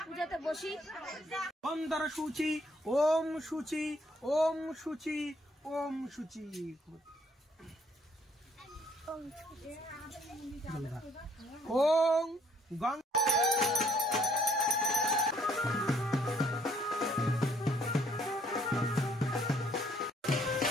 পূজাতে বসি। অন্তর সূচি ওম সূচি ওম সূচি ওম সূচি ওম গঙ্গা।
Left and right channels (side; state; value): both; normal; correlation 0.65